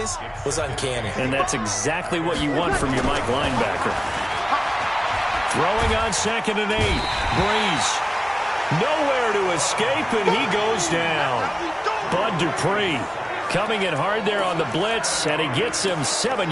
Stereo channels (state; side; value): identical; both; correlation 1.00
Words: was uncanny. And that's exactly what you want from your Mike linebacker. Throwing on 2nd and 8. Breeze. Nowhere to escape, and he goes down. Bud Dupree coming in hard there on the blitz, and he gets him 7